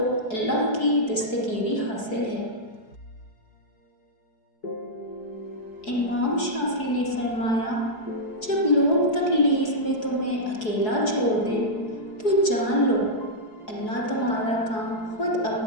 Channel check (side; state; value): right; late; 4.7 ms